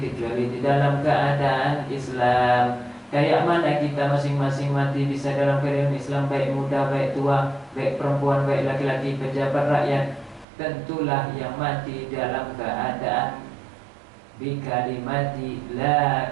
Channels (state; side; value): drops out; left; at 10.5 s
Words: di dalam keadaan Islam. Kayak mana kita masing-masing mati bisa dalam keadaan Islam, baik muda, baik tua, baik perempuan, baik laki-laki, pejabat, rakyat. Tentulah yang mati dalam keadaan bikalimati la